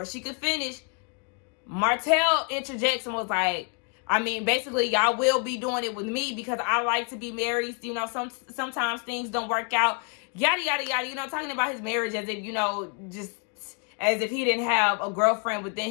she could finish, Martell interjects and was like, basically, y'all will be doing it with me because I like to be married. Sometimes things don't work out. yada, yada, yada, you know, talking about his marriage as if, you know, just as if he didn't have a girlfriend within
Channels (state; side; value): quieter; right; 37.2 dB